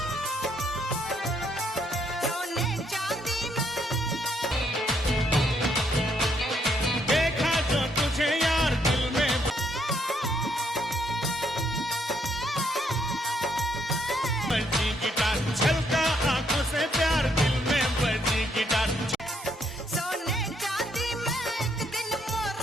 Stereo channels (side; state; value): both; normal; correlation 0.72